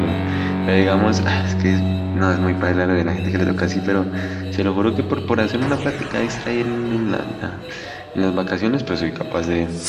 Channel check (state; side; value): identical; both; correlation 1.00